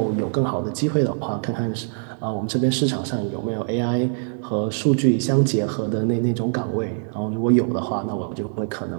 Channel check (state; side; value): silent; left; digital silence